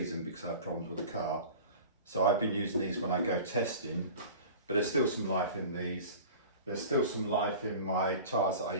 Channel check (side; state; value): both; inverted; correlation -0.38